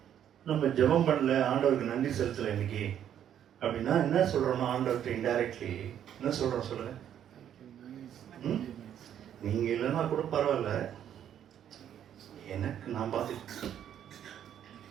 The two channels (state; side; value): quieter; left; 10.0 dB